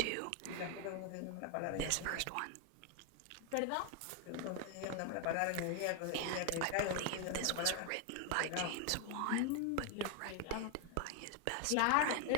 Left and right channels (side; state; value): both; different; correlation 0.01